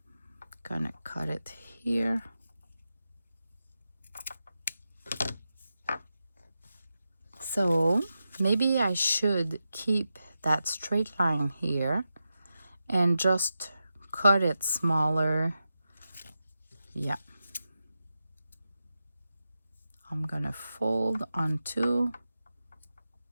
gonna cut it here. So maybe I should keep that straight line here and just cut it smaller. Yeah. I'm gonna fold on two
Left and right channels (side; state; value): both; inverted; correlation -0.90